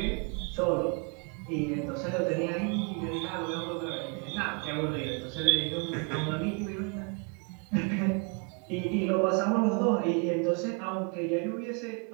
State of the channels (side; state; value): left; quieter; 35.0 dB